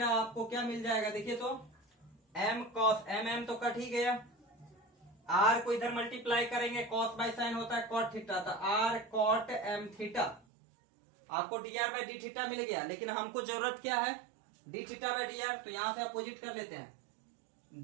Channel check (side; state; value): left; drops out; at 10.4 s